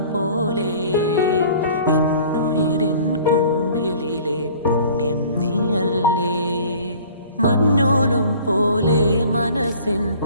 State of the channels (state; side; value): inverted; both; correlation -0.48